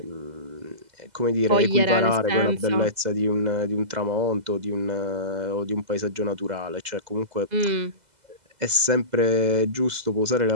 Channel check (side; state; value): left; late; 2.0 ms